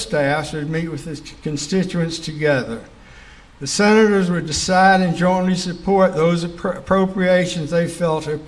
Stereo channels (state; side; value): identical; both; correlation 1.00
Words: would meet with the constituents together. The senators would decide and jointly support those appropriations they felt